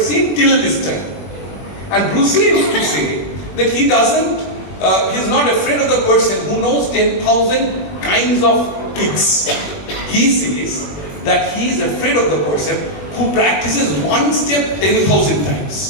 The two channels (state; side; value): late; right; 21 ms